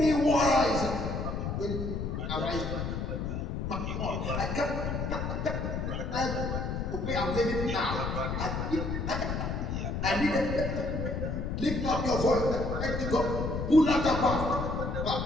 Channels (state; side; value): noise; left; rumble, 2 dB below the sound